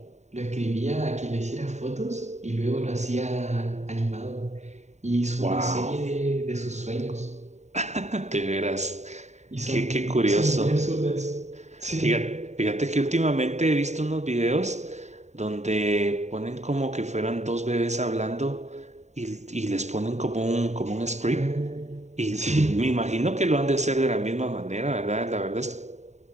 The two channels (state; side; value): late; left; 0.33 ms